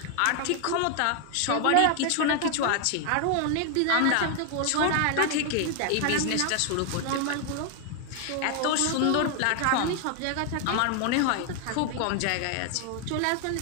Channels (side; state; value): both; different; correlation 0.00